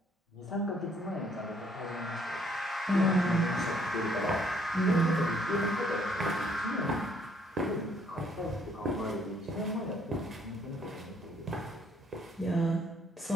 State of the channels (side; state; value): both; normal; correlation 0.65